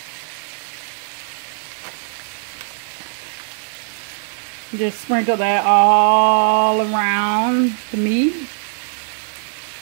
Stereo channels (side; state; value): left; silent; digital silence